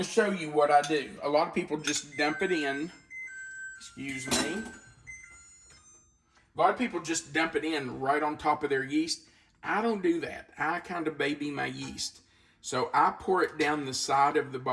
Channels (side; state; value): both; identical; correlation 1.00